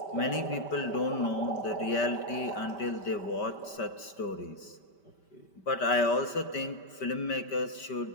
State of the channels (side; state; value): right; late; 5.1 ms